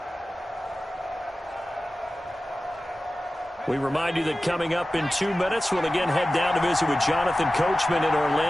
We remind you that coming up in 2 minutes, we'll again head down to visit with Jonathan Coachman in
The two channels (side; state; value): both; normal; correlation 0.95